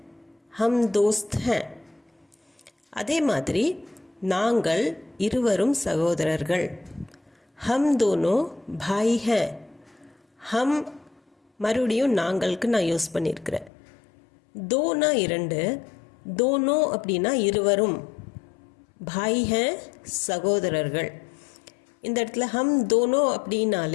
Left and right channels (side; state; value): right; drops out; at 13.7 s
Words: ஹம் தோஸ்த் ஹே. அதே மாதிரி நாங்கள் இருவரும் சகோதரர்கள், ஹம் தோனோ பாய் ஹே. ஹம் மறுபடியும் நாங்களுக்கு நான் யூஸ் பண்ணியிருக்கிறேன். தோனா இரண்டு, தோனோ அப்படின்னா இருவரும், பாய் ஹே சகோதரர்கள். இந்த இடத்துல ஹம் தோனோ